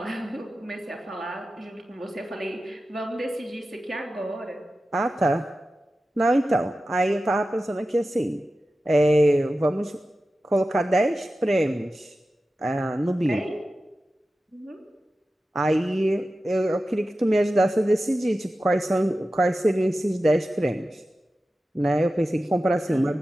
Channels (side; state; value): both; normal; correlation 0.94